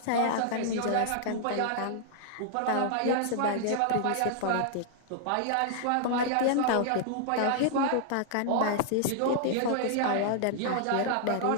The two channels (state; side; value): different; both; correlation -0.01